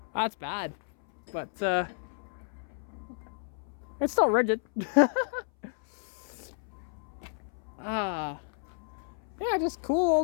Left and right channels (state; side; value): silent; right; 57 dB below the other